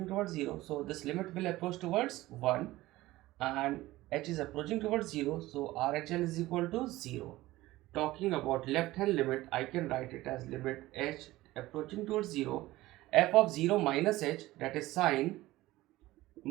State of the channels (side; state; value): left; quieter; 17.6 dB